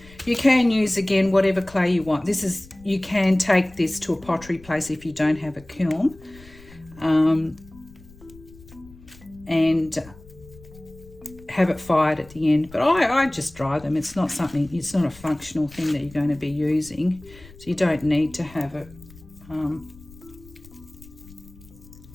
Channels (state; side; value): noise; left; rumble, 22 dB below the sound